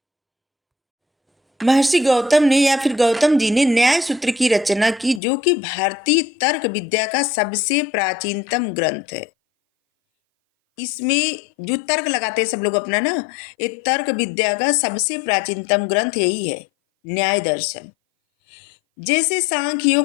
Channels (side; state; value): right; drops out; at 5.2 s